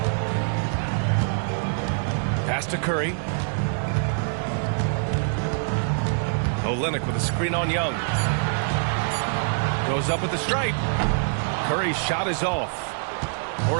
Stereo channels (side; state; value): left; silent; 62 dB below the other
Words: Pass to Curry. Olynyk with a screen on Young. Goes up with the stripe. Curry's shot is off.